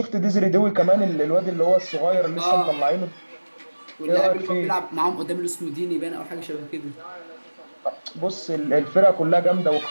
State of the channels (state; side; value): inverted; both; correlation -1.00